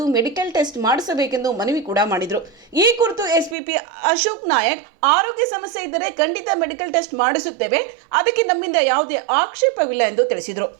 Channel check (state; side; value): drops out; left; at 3.6 s